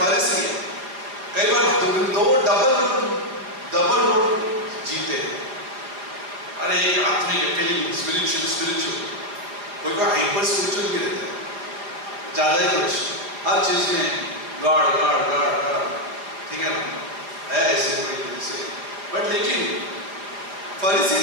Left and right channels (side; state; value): left; late; 4.8 ms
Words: कई बार दो डबल रोड जीते हैं। अरे एक आत्मिक फीलिंग स्पिरिचुअल, कोई हाइपर स्पिरिचुअल भी रहते हैं, ज्यादा ही कुछ हर चीज में गॉड, ठीक है ना, है ऐसे कोई जैसे। बट लेकिन फरीसी